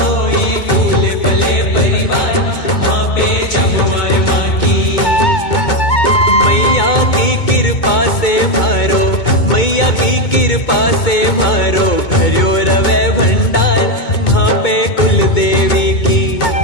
फूले फले परिवार। वहाँ पे जमुआए माँ की, मैया की कृपा से मारो, मैया की कृपा से मारो भर्यो रवे भंडार। वहाँ पे कुल देवी की,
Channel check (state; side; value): late; right; 2.2 ms